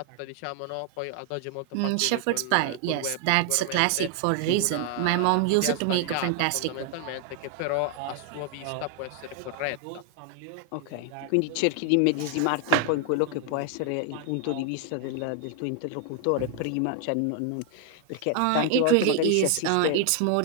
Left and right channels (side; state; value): both; different; correlation 0.00